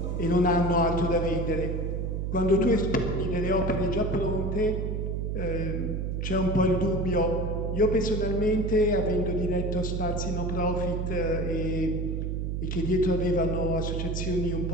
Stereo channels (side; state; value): right; noise; hum, 1 dB below the sound